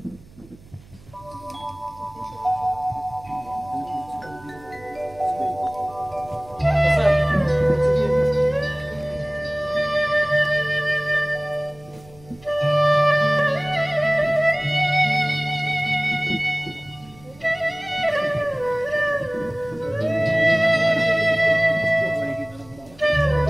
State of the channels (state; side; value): noise; right; hum, 24 dB below the sound